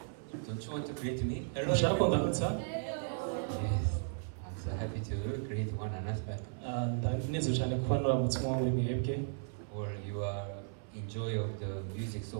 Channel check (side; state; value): left; silent; 54 dB below the other